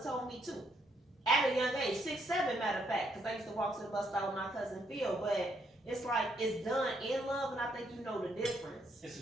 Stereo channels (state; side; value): normal; both; correlation 0.73